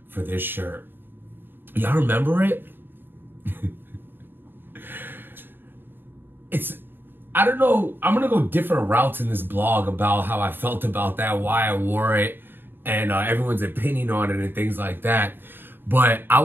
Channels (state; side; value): late; left; 0.097 ms